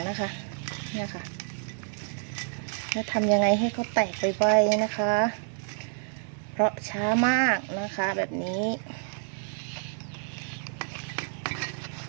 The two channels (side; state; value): left; silent; 59 dB below the other